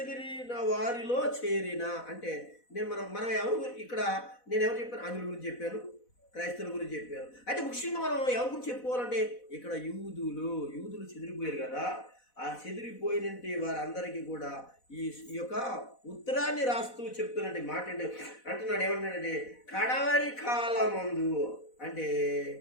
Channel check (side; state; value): right; late; 4.1 ms